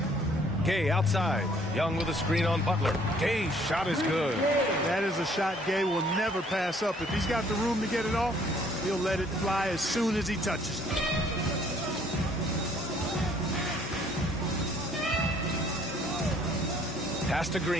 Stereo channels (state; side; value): normal; both; correlation 0.61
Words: Gay outside. Young with a screen on Butler. Gay's shot is good. That is a shot Gay will never pass up. If he's got the room to get it off, he'll let it fly as soon as he touches it. Pass to